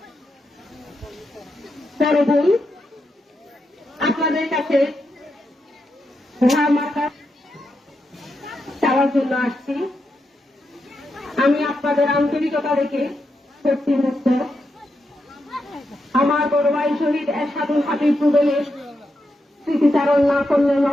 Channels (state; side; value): normal; both; correlation 0.84